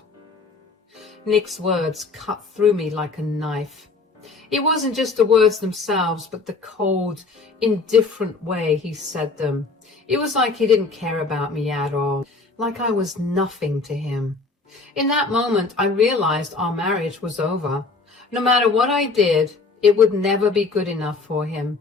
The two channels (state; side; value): quieter; right; 4.0 dB